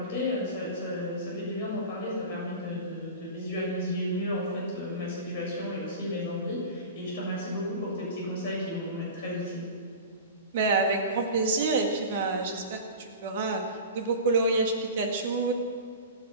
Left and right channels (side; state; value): both; inverted; correlation -0.32